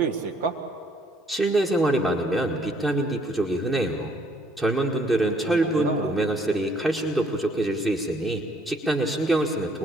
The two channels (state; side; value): normal; both; correlation 0.64